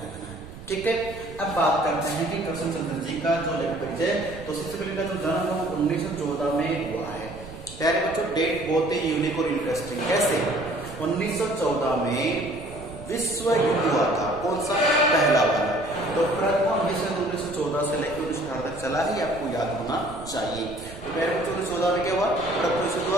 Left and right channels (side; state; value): right; noise; rumble, 15 dB below the sound